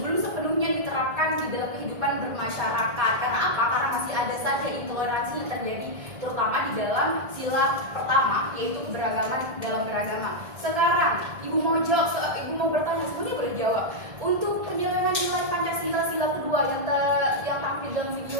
sepenuhnya diterapkan di dalam kehidupan bermasyarakat. Karena apa? Karena masih ada saja intoleransi yang terjadi, terutama di dalam sila pertama, yaitu keberagaman dalam beragama. Sekarang, Ibu mau jawab, Ibu mau bertanya, semuanya boleh jawab. Untuk penjelasan nilai Pancasila sila kedua yang tampil dalam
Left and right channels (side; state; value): left; late; 1.7 ms